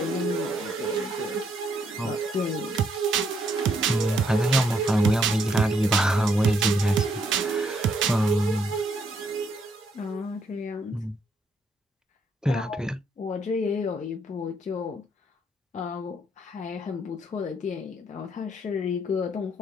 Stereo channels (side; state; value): both; normal; correlation 0.73